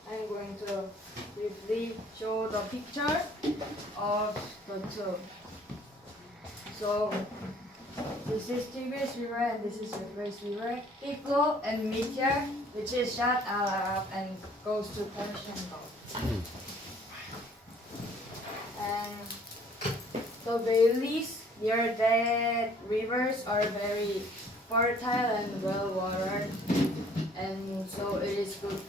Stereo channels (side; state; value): both; normal; correlation 0.57